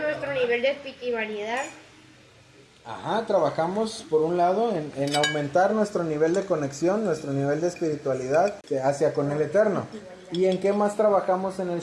nuestro nivel de espiritualidad. Trabajamos por un lado en aumentar nuestro nivel de conexión, nuestro nivel de espiritualidad hacia con el Eterno. ¿Y en qué más trabajamos en el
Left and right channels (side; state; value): both; identical; correlation 1.00